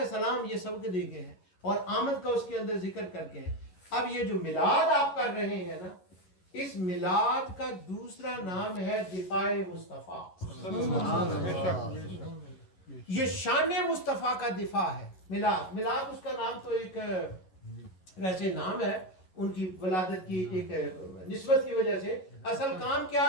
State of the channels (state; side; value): late; right; 11 ms